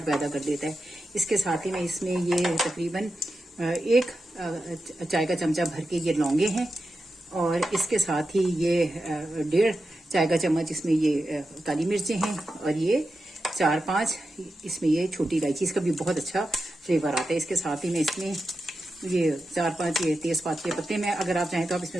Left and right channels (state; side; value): normal; both; correlation 0.90